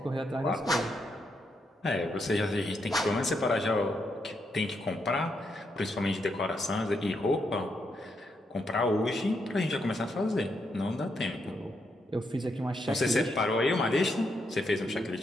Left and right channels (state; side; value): normal; both; correlation 0.80